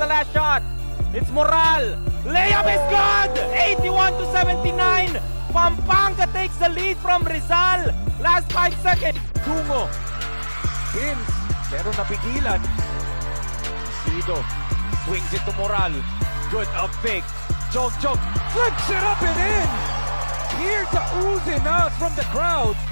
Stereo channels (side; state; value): both; inverted; correlation -1.00